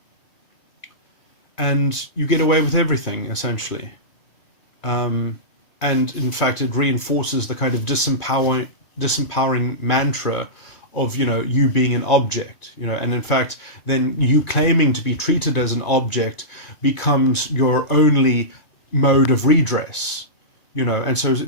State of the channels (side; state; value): right; late; 2.5 ms